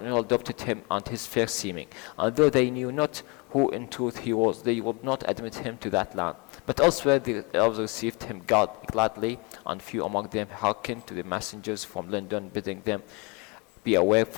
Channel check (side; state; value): right; quieter; 29.7 dB